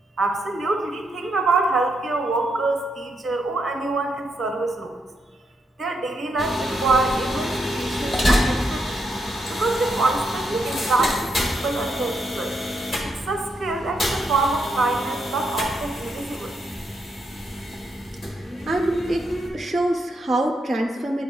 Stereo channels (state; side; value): normal; both; correlation 0.80